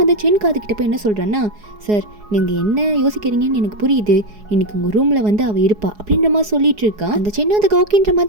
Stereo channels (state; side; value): late; left; 4.8 ms